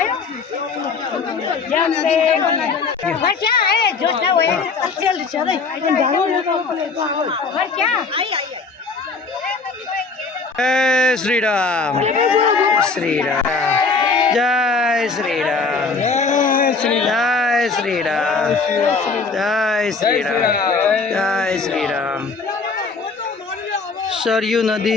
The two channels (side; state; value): right; quieter; 4.4 dB